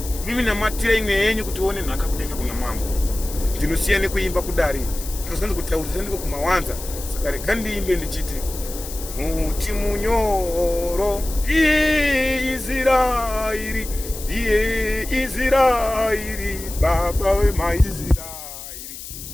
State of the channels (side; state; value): left; noise; hiss, 11 dB below the sound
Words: mimi namatire imwe yenyu kuti uone nhaka kudenga kuna mambo. Ndinosiya nekuimba kudare, ndakazanzi kutaurisa ndiko kumawanza. Saka rega ndiimbe ndichiti muti munyoro ndiye Israeri, ndiye Israeri, baba wemaIsraeri.